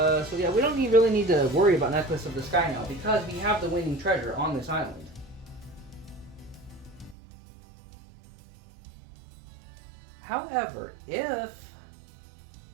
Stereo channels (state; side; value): drops out; left; at 7.2 s